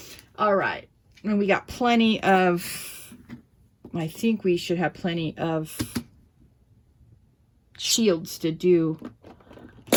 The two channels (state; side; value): identical; both; correlation 1.00